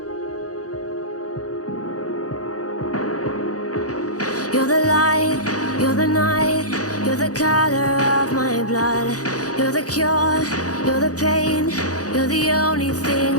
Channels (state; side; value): late; right; 0.67 ms